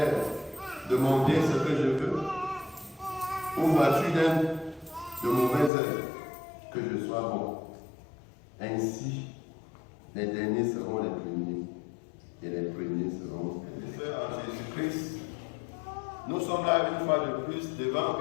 de mon bien ce que je veux? Ou vois-tu de mauvais œil que je sois bon? Ainsi, les derniers seront les premiers, et les premiers seront les frères en Jésus-Christ. Nous sommes là une fois de plus devant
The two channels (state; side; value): drops out; right; at 5.7 s